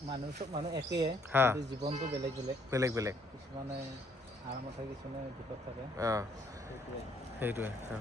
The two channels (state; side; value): normal; both; correlation 0.66